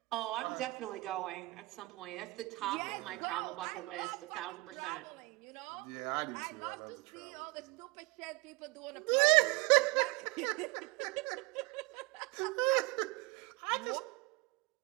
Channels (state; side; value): quieter; left; 24.4 dB